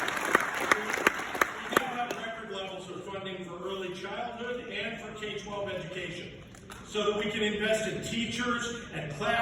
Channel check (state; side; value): identical; both; correlation 1.00